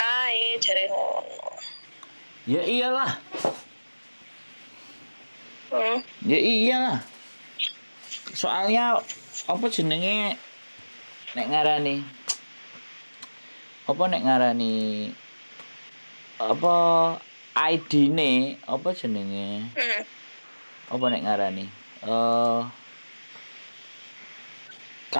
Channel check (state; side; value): inverted; both; correlation -1.00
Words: jare ngono. Ya iyalah. Hmm. Ya iyalah. Soalnya apa jenenge nek ngarani apa ID-ne apa jenenge? Apa nek ngarani?